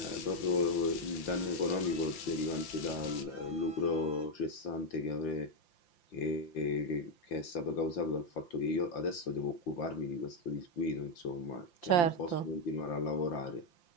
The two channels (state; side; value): late; right; 5.8 ms